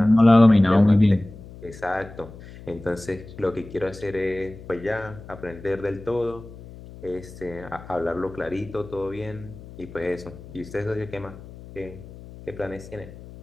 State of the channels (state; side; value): noise; left; hum, 17 dB below the sound